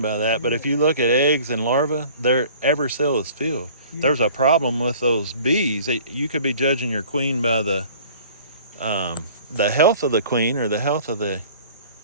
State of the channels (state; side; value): inverted; both; correlation -0.49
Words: by that, but if you look at eggs and larvae, every cell is filled. Yeah. There's a problem with those bees. You could be judging your queen by the health of the queen or the health of the